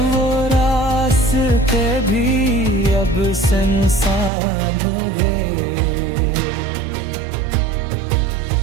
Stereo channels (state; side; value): drops out; left; at 4.3 s